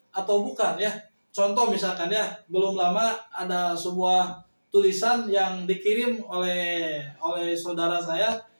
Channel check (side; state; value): both; inverted; correlation -1.00